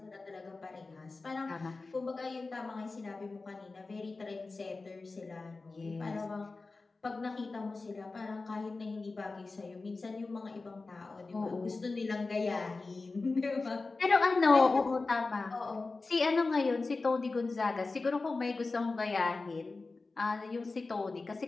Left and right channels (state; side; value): quieter; right; 3.7 dB